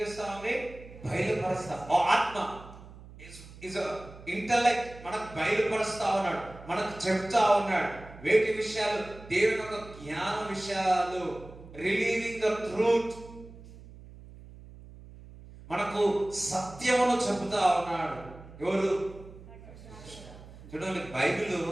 బయలుపరుస్తాం. ఆత్మ ఇస్ ఇంటలెక్ట్ మనకు బయలుపరుస్తా ఉన్నాడు, మనకు చెప్తా ఉన్నాడు వేటి విషయాలు, దేవుని యొక్క జ్ఞాన విషయాలు, రిలీవింగ్ ద ట్రూత్, మనకు సత్యమును చెబుతా ఉన్నాడు. ఎవరు? చూడండి, బైబిల్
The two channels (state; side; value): noise; right; hum, 18 dB below the sound